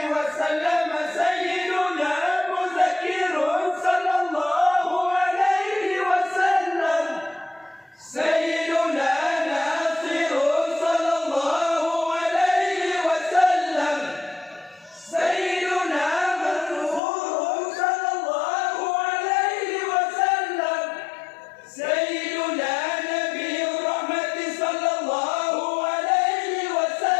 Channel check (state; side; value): drops out; right; at 17.0 s